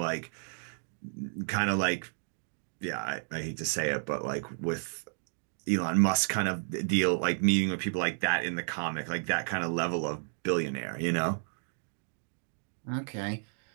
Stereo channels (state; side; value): silent; left; digital silence